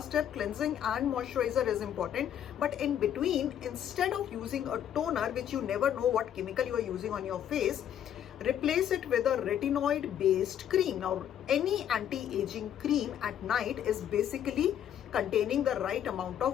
step, cleansing and moisturizer is important. But in between, instead of using a toner, which you never know what chemical you are using on your face, replace it with a retinoid based cream. Now any anti-aging cream at night is basically containing the right amount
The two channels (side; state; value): right; quieter; 10.0 dB